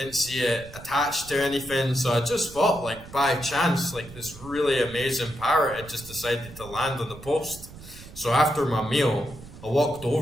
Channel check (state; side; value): noise; right; rumble, 17 dB below the sound